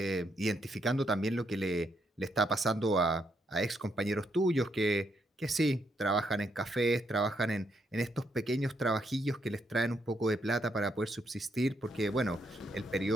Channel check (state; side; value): normal; both; correlation 0.77